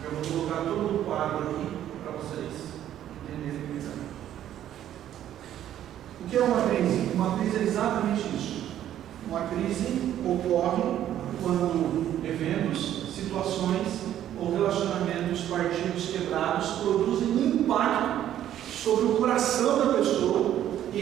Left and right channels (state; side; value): quieter; left; 11.4 dB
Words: eu vou colocar todo o quadro aqui para vocês entenderem melhor. O que é uma crise? Uma crise é exatamente isso. Uma crise ocorre quando eventos, situações ou relacionamentos, partidos quebrados produzem um impacto sobre o coração da pessoa,